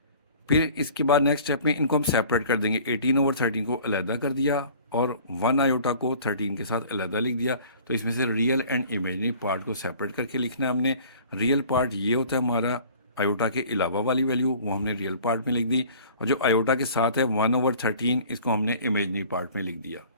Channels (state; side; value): inverted; both; correlation -0.48